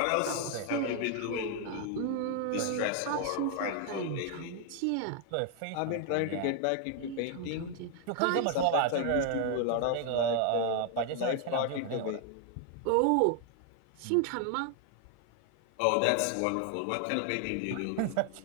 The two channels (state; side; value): different; both; correlation 0.00